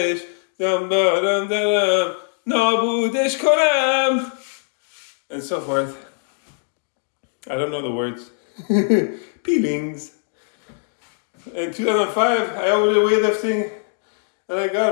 Dam dam dam. Nabudesh konam. And so forth. I don't know the words. Peelings. In 2005, I overdid weightlifting, and I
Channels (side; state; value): right; silent; digital silence